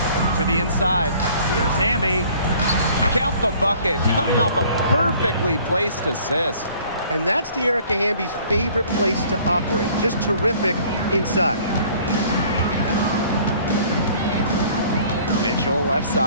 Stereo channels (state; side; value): inverted; both; correlation -0.54